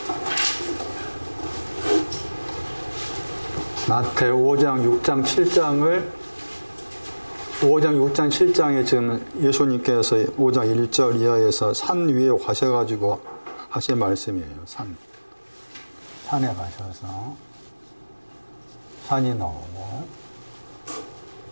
마태 5장 6장 7장에 지금 예수님께서 5장 1절 이하에서 산 위에 가셔가지고 하신 말씀이에요. 산에 가셔서 산이 나오고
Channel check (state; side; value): inverted; both; correlation -1.00